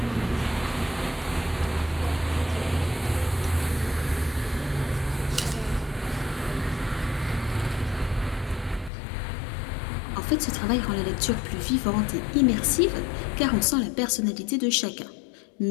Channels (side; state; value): right; drops out; at 8.9 s